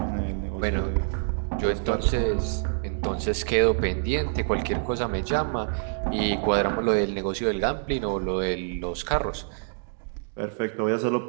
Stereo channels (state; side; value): silent; left; digital silence